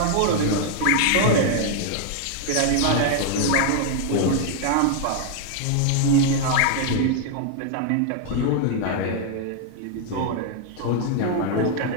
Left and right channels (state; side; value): different; both; correlation 0.00